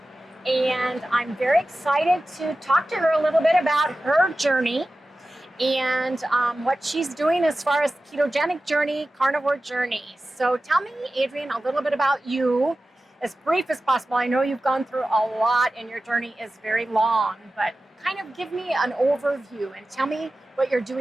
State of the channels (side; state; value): both; normal; correlation 0.94